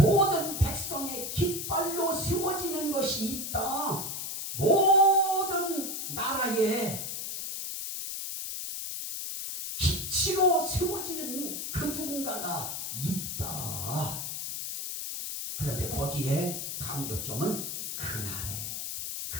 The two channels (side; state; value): left; noise; hiss, 5 dB below the sound